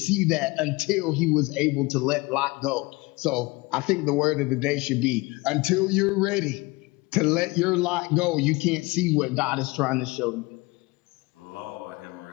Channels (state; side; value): quieter; right; 23.4 dB